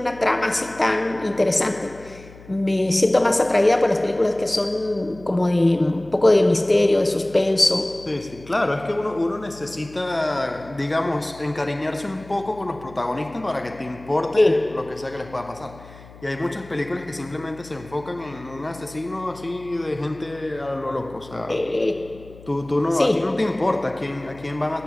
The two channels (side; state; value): left; noise; hum, 20 dB below the sound